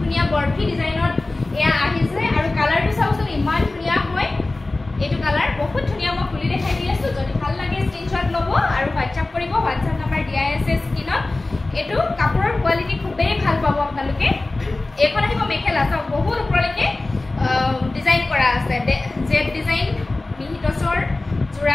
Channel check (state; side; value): quieter; right; 3.0 dB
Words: বৰফি ডিজাইনত এয়া আহিছে আৰু কালাৰটো চাওকচোন ইমান ধুনিয়া হয় এটো কালাৰ বহুত ধুনিয়া মই খুলি দেখাই দি আছো যদি ভাল লাগে স্ক্ৰিনশ্বট ল'ব আৰু WhatsApp কৰিব WhatsApp নম্বৰ দিয়াই আছে স্ক্ৰিনত এটো কাপোৰৰ কোৱালিটি খুবেই ভাল পাব আপোনালোকে এখন আহিব মেখেলা চাওক বহুত ওপৰলৈকে ডিজাইন কৰা আছে জেড ডিজাইন মিহি টছৰ